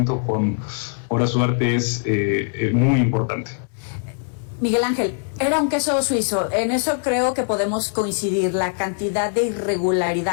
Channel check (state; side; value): silent; right; 61 dB below the other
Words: con Horacio Duarte es muy importante. Miguel Ángel, era un queso suizo, en eso creo que podemos coincidir, la cantidad de